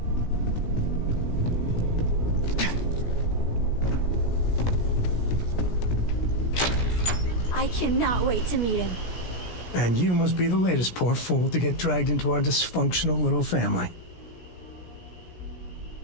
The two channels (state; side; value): late; right; 17 ms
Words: I cannot wait to meet him. And you must be the latest poor fool to get dragged into our dysfunctional little family.